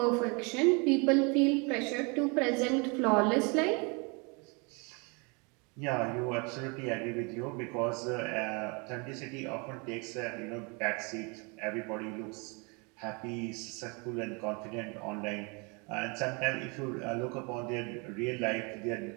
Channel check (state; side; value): quieter; left; 31.2 dB